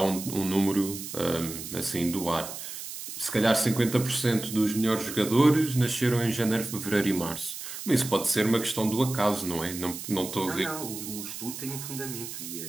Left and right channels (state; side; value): noise; right; hiss, 9 dB below the sound